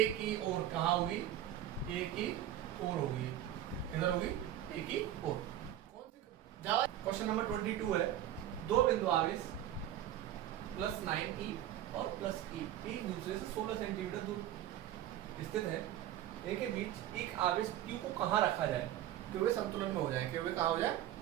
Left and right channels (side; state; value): left; quieter; 12.3 dB